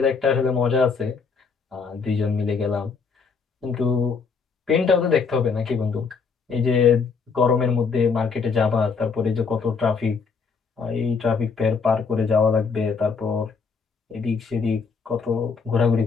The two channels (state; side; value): quieter; right; 5.3 dB